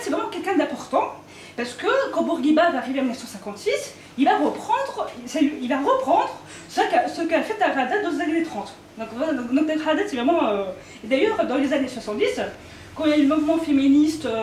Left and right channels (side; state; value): both; identical; correlation 1.00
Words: c'est vraiment quelqu'un d'important, parce que quand Bourguiba va arriver en 1956, il va reprendre ce qu'a fait Dar Haddad dans les années 30. Donc Dar Haddad, c'est vraiment... Et d'ailleurs, dans les années 70, quand il y a eu le mouvement féministe